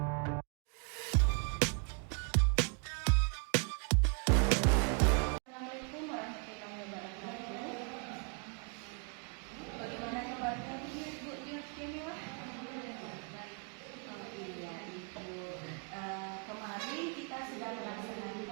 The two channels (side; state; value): left; quieter; 37.7 dB